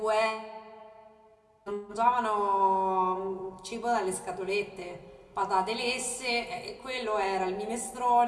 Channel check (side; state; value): both; identical; correlation 1.00